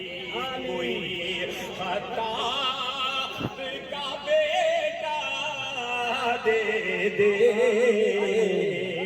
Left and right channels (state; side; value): identical; both; correlation 1.00